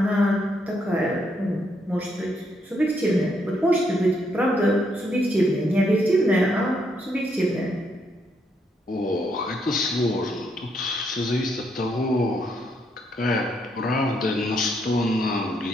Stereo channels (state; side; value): normal; both; correlation 0.75